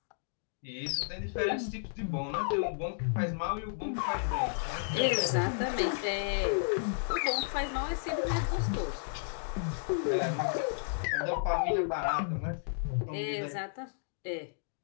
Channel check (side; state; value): right; silent; digital silence